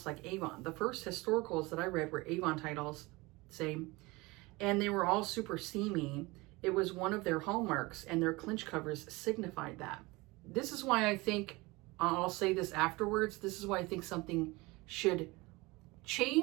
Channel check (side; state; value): left; quieter; 23.2 dB